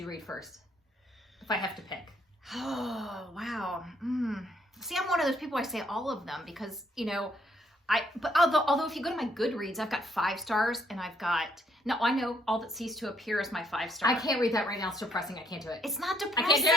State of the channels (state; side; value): normal; both; correlation 0.68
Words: read first? If I have to pick. Oh, wow. See, I'm one of those people, I say all of them because, but although if you go to my Goodreads, I've got 5 stars and I know All That Ceased to Appear is my 5-star. I can't read that right now. It's depressing. I can't do it. It's not I depressing.